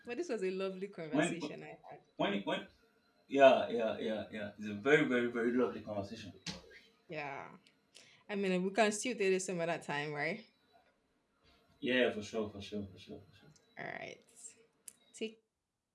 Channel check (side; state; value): both; identical; correlation 1.00